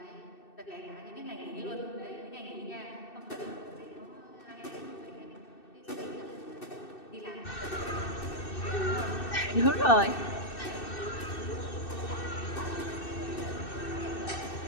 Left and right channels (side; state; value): right; late; 2.6 ms